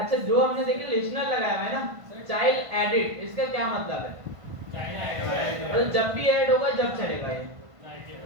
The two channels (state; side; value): late; left; 1.5 ms